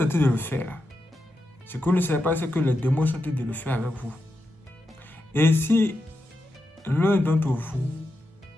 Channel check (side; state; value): both; normal; correlation 0.87